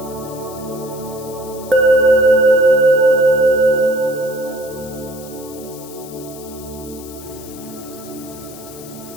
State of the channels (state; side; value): noise; left; hiss, 18 dB below the sound